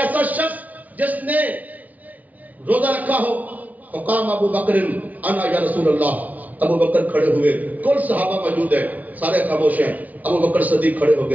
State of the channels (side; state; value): left; late; 0.074 ms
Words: شخص جس نے روزہ رکھا ہو. فقام ابو بکر انا یا رسول اللہ, ابو بکر کھڑے ہوئے, کل صحابہ موجود ہیں, سارے خاموش ہیں. ابو بکر صدیق کھڑے ہو